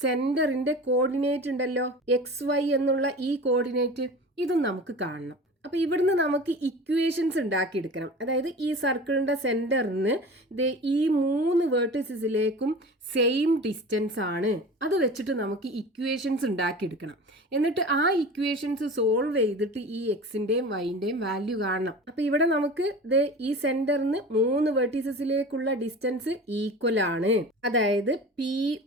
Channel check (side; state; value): both; normal; correlation 0.36